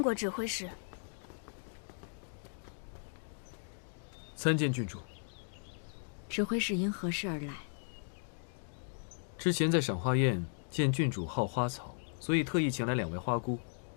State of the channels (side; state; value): right; silent; digital silence